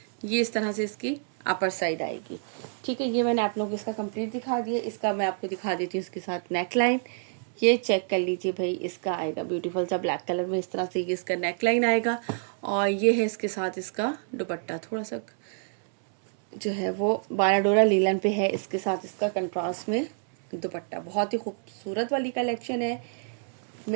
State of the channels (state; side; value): silent; left; 60 dB below the other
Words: ये इस तरह से इसकी अपर साइड आएगी। ठीक है, ये मैंने आप लोगों को इसका कंप्लीट दिखा दिया। इसका मैं आपको दिखा देती हूँ इसके साथ नेक लाइन। ये चेक कर लीजिए भाई, इसका आएगा ब्यूटीफुल सा ब्लैक कलर में, इस तरह से ये इसका नेक लाइन आएगा। और ये है इसके साथ इसका दुपट्टा, थोड़ा सा जो है वो 12 डोरा लीलन पे है, इसके साथ इसका कंट्रास्ट में दुपट्टा। बहुत ही खूबसूरत वाली कलेक्शन है,